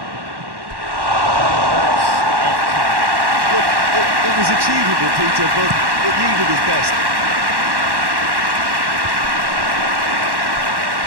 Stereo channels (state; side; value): late; left; 1.1 ms